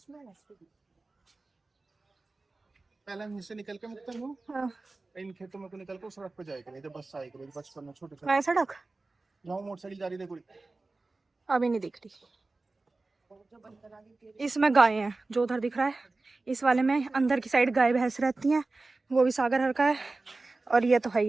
पहले हम से निकल के मुक्ता हूँ। हाँ। इन खेतों में को निकल कर सड़क पे जाएगा, नहीं तो बस आएगी। बचपन में छोटे मैं सड़क जाऊँ, मोटरसाइकिल जा रही देखो। अभी नहीं दिख रही। इसमें गाय हैं, जो उधर दिख रहा है इस वाले में अंदर की साइड गाय भैंस रहती हैं, वो भी सागर हर का है। और ये तो है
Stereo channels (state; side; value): quieter; left; 3.4 dB